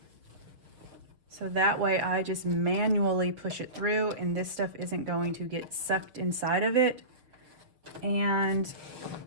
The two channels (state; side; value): late; left; 6.6 ms